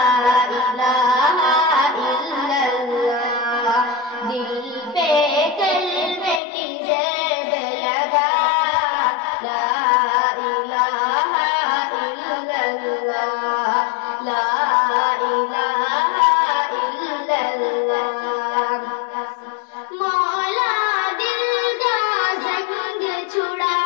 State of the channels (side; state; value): right; drops out; at 6.4 s